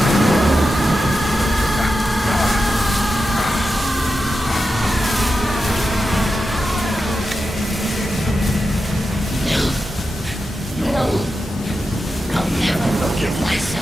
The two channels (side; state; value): both; normal; correlation 0.90